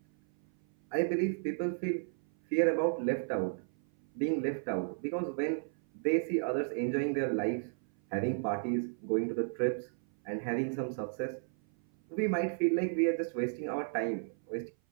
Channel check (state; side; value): silent; left; 55 dB below the other